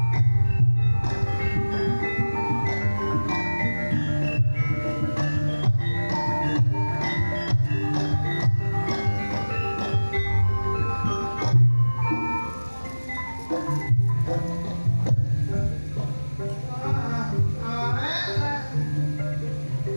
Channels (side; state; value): both; inverted; correlation -1.00